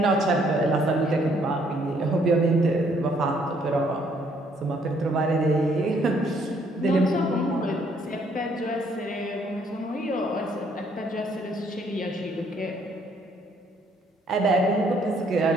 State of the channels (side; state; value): both; normal; correlation 0.66